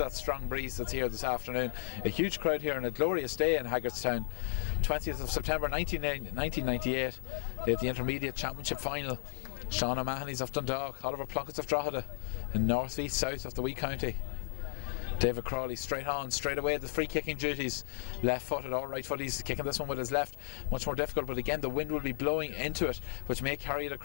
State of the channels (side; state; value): right; silent; digital silence